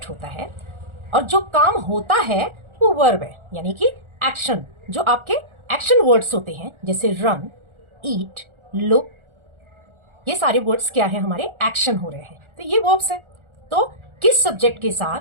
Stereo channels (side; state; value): left; late; 1.4 ms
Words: होता है और जो काम होता है वो वर्ब है, यानी कि एक्शन, जो आपके एक्शन वर्ड्स होते हैं जैसे रन, ईट, लुक, ये सारे वर्ड्स क्या है, हमारे एक्शन हो रहे हैं, तो ये वर्ब्स हैं। तो किस सब्जेक्ट के साथ